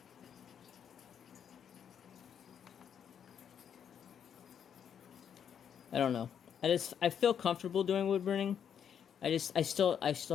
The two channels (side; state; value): right; quieter; 8.3 dB